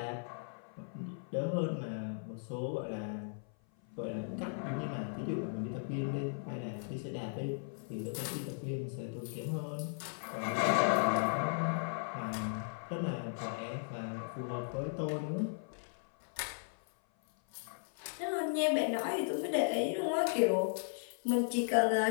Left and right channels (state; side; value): silent; right; 53 dB below the other